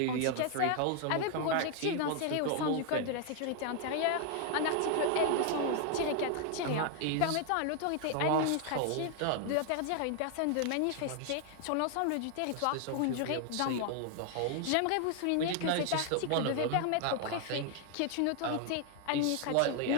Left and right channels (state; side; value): different; both; correlation 0.00